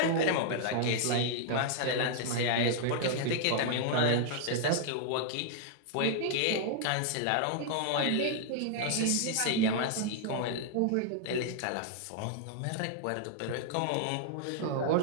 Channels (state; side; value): different; both; correlation -0.01